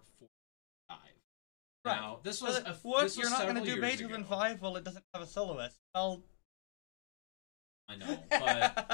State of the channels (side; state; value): right; quieter; 29.4 dB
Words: 45. Now this was this was several years ago. 5? Well, it doesn't have a soloist. Well, I know,